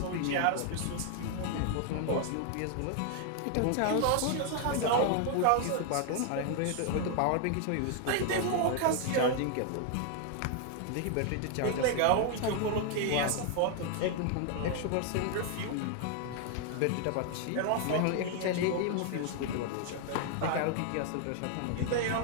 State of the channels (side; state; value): both; different; correlation 0.00